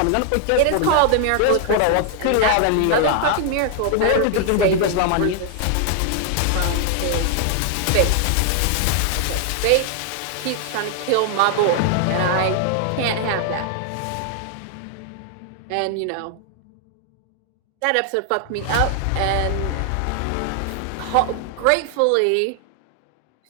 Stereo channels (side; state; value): both; different; correlation 0.00